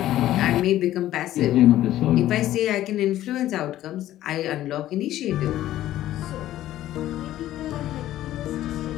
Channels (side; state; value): right; quieter; 13.7 dB